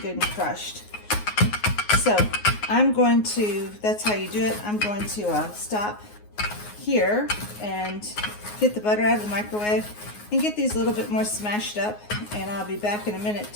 good and crushed. So I'm going to, that's how you do it. I'm going to stop here and get the butter out of the microwave and get these a little bit more smashed up, and I'll be back in a minute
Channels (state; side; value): late; right; 9.5 ms